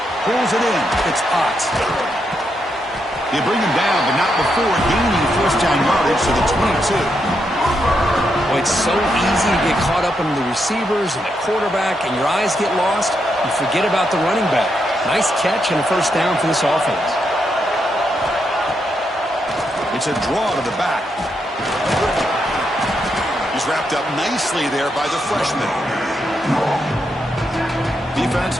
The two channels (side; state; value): both; normal; correlation 0.81